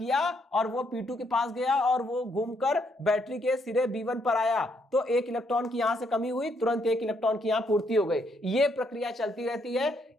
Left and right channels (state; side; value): normal; both; correlation 0.73